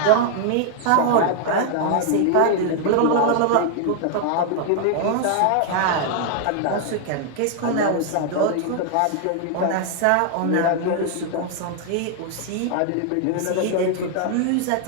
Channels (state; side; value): different; both; correlation 0.00